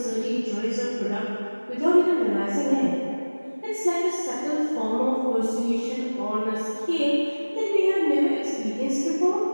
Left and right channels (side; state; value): both; inverted; correlation -1.00